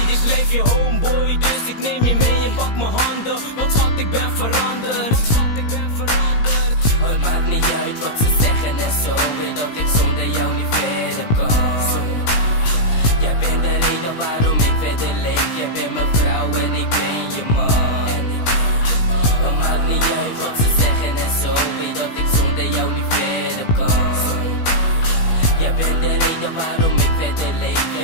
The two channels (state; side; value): late; right; 17 ms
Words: blijf je homeboy, dus ik neem je mee en pak mijn handen. Want schat, ik ben veranderd. Want schat, ik ben veranderd. Het maakt niet uit wat ze zeggen en zo. Weet dat ik zonder jou niet verder kan. Jij bent de reden waarom ik verder leef. Jij bent mijn vrouw en ik ben je man. Het maakt niet uit wat ze zeggen en zo. Weet dat ik zonder jou niet verder kan. Jij bent de reden waarom ik verder leef.